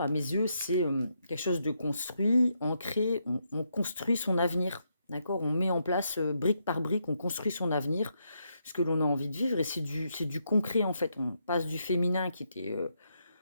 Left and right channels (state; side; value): inverted; both; correlation -0.79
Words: à mes yeux, c'est, quelque chose de construit, ancré, on construit son avenir, d'accord? On met en place, brique par brique, on construit son avenir, ce que l'on a envie de vivre et c'est du concret en fait. On passe du féminin qui était,